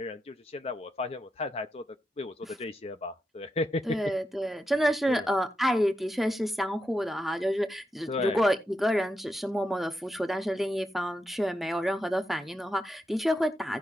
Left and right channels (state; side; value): normal; both; correlation 0.86